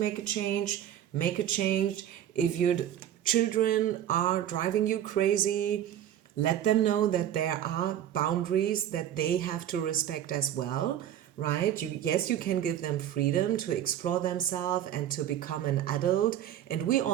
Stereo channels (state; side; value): quieter; left; 10.9 dB